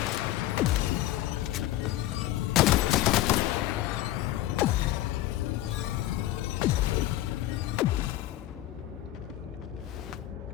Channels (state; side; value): quieter; right; 14.4 dB